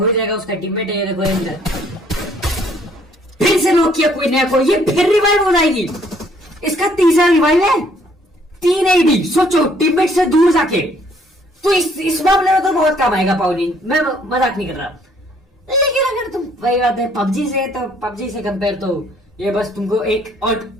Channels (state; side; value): normal; both; correlation 0.63